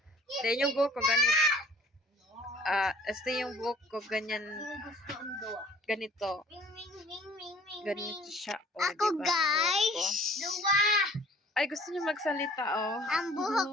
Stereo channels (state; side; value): normal; both; correlation 0.52